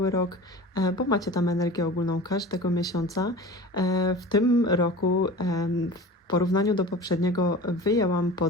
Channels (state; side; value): normal; both; correlation 0.36